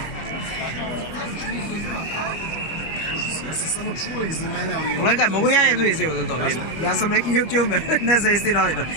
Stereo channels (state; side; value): late; right; 25 ms